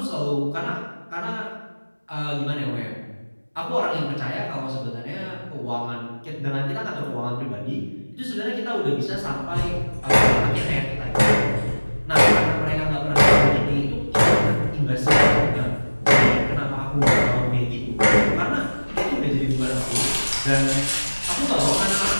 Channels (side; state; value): both; inverted; correlation -1.00